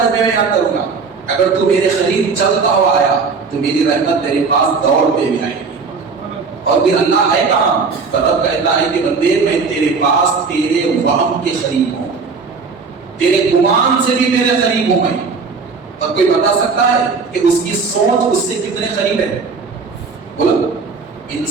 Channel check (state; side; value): quieter; left; 4.8 dB